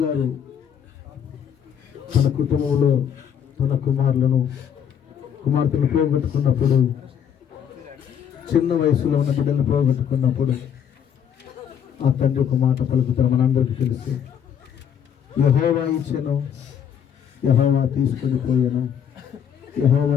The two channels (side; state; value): right; quieter; 8.4 dB